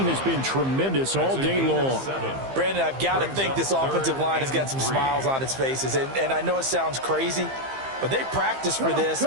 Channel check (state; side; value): late; left; 15 ms